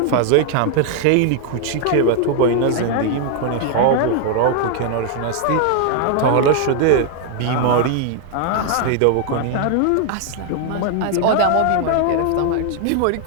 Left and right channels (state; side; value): different; both; correlation 0.00